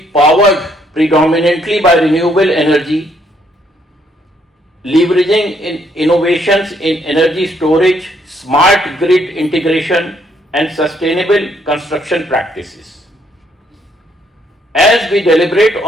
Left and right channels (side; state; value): both; normal; correlation 0.70